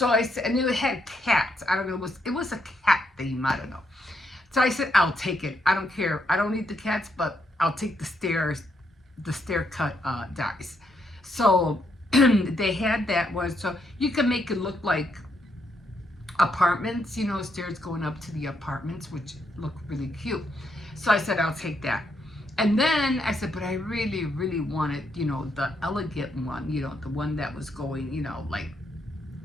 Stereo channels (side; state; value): both; normal; correlation 0.77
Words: I said, and it had cats. I don't know, it was a cat theme. I don't know. So I said, I'll take it. I don't care. I don't need the cats, but I'll take the stair cut dies. So they had that one, so you can make it look like apartments, stairs going up to the apartments, which look really cute. So I said, I'll take that. And then I said, but I really, really wanted, the elegant one, the one that was going, like